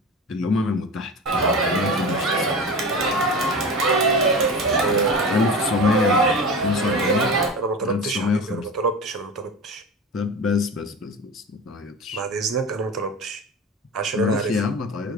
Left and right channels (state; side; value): normal; both; correlation 0.30